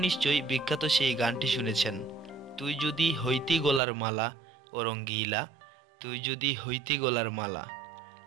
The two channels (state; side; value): drops out; left; at 3.8 s